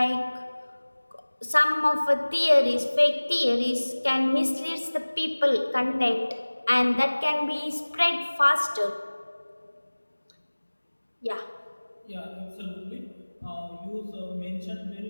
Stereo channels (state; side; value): inverted; both; correlation -1.00